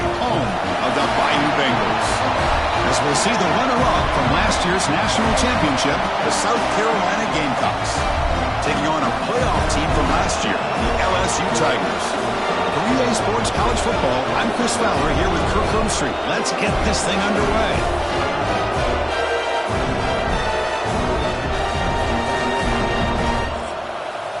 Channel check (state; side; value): identical; both; correlation 1.00